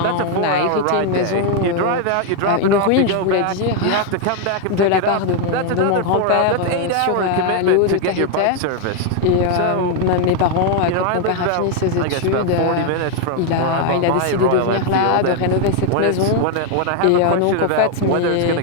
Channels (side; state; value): both; different; correlation 0.00